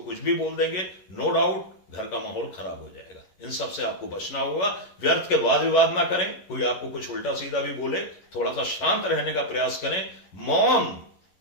कुछ भी बोल देंगे, नो डाउट घर का माहौल खराब हो जाएगा। इन सब से आपको बचना होगा। व्यर्थ के वाद विवाद ना करें। कोई आपको कुछ उल्टा सीधा भी बोले, थोड़ा सा शांत रहने का प्रयास करें। मौन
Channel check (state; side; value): late; right; 11 ms